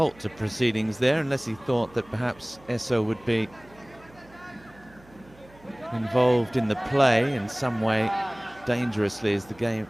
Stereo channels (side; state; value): right; noise; hum, 25 dB below the sound